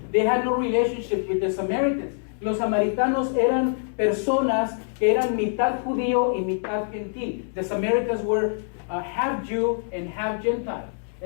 They had no relationship with the Samaritans. Los samaritanos eran personas que eran mitad judío y mitad gentil. The Samaritans were half Jew and half Gentile.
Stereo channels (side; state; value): right; silent; digital silence